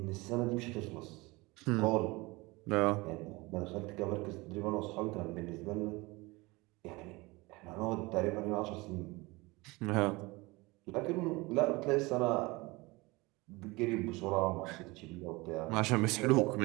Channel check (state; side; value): quieter; left; 23.3 dB